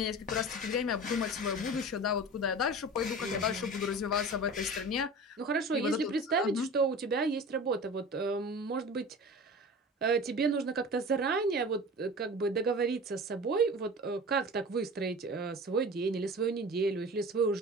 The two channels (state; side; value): normal; both; correlation 0.36